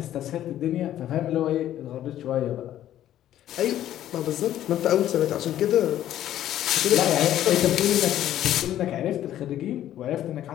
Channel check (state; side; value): quieter; right; 12.2 dB